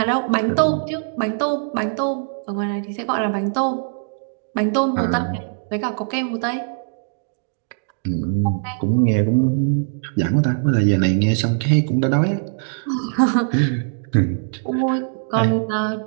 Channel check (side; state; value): left; silent; digital silence